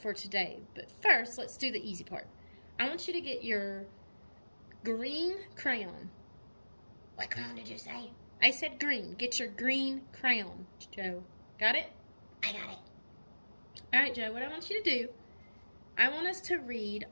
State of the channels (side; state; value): both; inverted; correlation -1.00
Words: today. But first, let's do the easy part. I want you to get your green crayon. What crayon did you say? I said green. Get your green crayon, Joe. Got it? I got it. Alright, Joe, what I want you to do, I want us to read